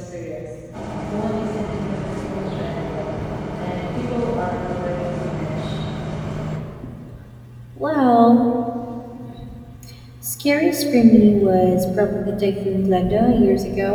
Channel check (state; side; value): identical; both; correlation 1.00